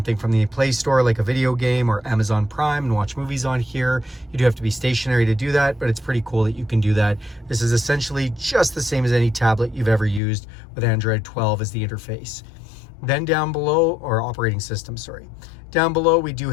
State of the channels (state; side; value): drops out; right; at 10.2 s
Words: from the Play Store like a video game or Amazon Prime and watch movies on here. You do have to be stationary to do that, but it's pretty cool that you can do that. This is essentially just the same as any tablet you've ever used with Android 12 as the interface. Then down below, or operating system, sorry. Down below, we do